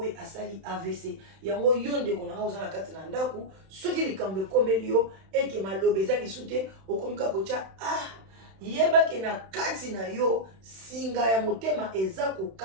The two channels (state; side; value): late; left; 31 ms